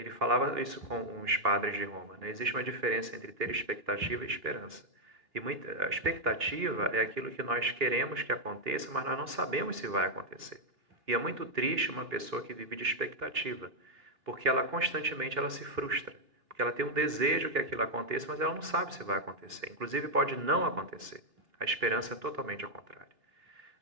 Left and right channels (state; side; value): late; left; 3.1 ms